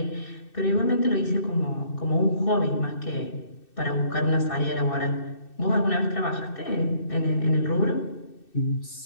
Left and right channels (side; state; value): right; late; 2.6 ms